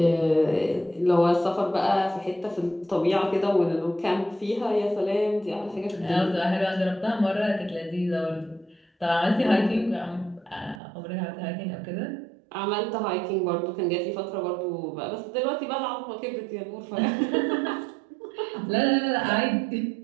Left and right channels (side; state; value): left; drops out; at 10.8 s